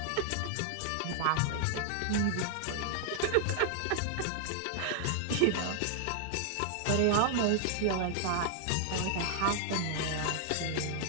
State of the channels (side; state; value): both; different; correlation 0.00